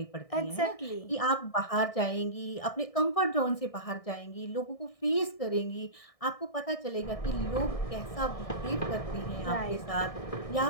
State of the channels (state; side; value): late; right; 1.6 ms